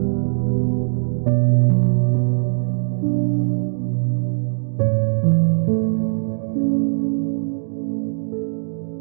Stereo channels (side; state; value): left; silent; digital silence